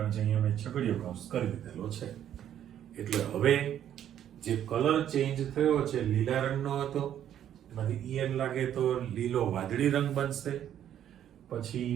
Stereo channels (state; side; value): quieter; left; 10.5 dB